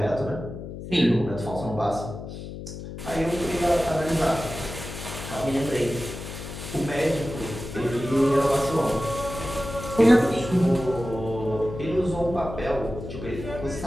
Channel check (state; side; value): noise; left; hum, 10 dB below the sound